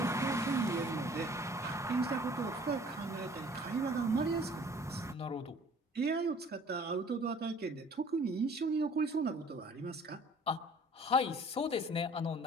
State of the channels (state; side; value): normal; both; correlation 0.52